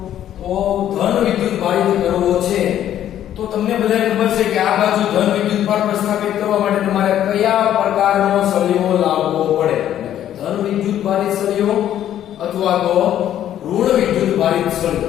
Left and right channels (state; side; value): quieter; right; 11.2 dB